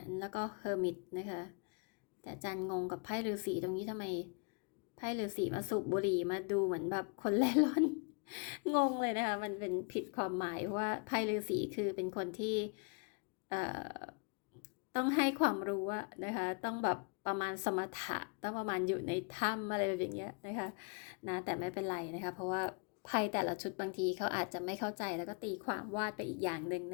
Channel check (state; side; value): quieter; right; 36.6 dB